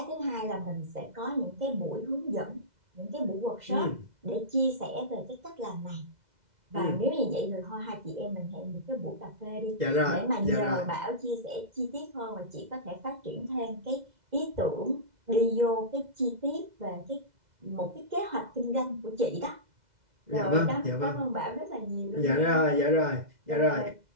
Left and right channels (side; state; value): left; late; 2.0 ms